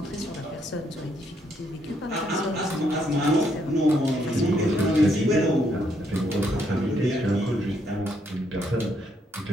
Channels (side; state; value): both; normal; correlation 0.73